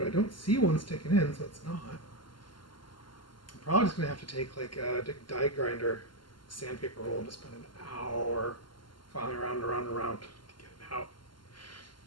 I don't see one sticking in, so it's not. I'm probably just going to have to take like a die grinder, sandpaper roll, and just spend an hour filing around and around and around to get it out.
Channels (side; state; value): right; late; 0.71 ms